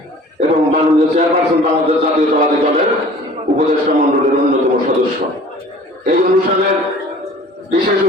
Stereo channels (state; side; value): normal; both; correlation 0.47